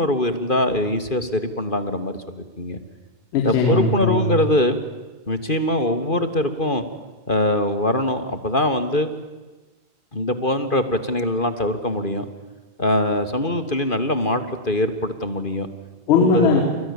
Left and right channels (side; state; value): right; late; 2.5 ms